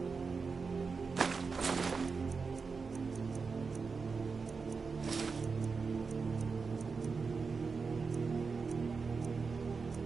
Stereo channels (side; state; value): left; quieter; 4.9 dB